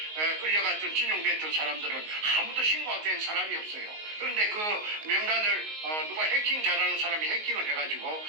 끌려갔던 진용됐던 사람들은 아무도 신고가 된 사람이 없어요. 그런데 그 명단을 누가 해킹 잘하는 사람이 해킹을 해가지고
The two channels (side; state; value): left; late; 19 ms